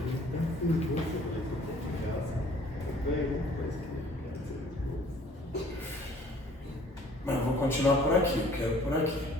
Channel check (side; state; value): both; normal; correlation 0.55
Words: continuar por aqui, eu quero por aqui.